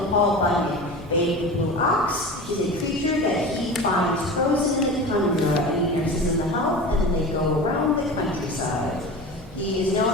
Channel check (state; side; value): normal; both; correlation 0.32